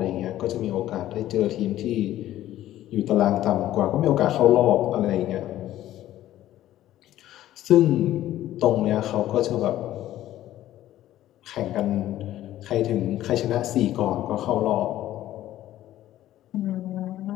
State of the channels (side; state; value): right; quieter; 13.6 dB